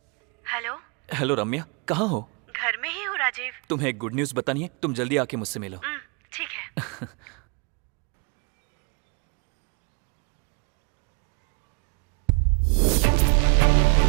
Hello. Hello Ramya, कहाँ हो? घर में ही हूँ राजीव। तुम्हें एक गुड न्यूज बतानी है, तुम जल्दी आके मुझसे मिलो। ठीक है।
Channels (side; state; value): left; quieter; 32.2 dB